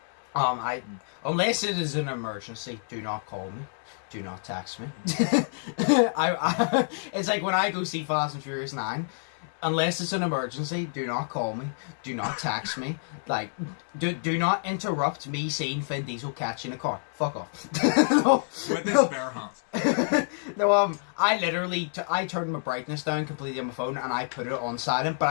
unless it is an emergency, do not call me. Do not text me. It's like when I go see Fast and Furious 9, unless it's an emergency, do not call me. Do not text me. Like, do not interrupt me seeing Vin Diesel catching a car. Fuck off. No, with his bare hands. No, I literally, I turn my brightness down completely on my phone and I put it on silent, but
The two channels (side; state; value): right; silent; digital silence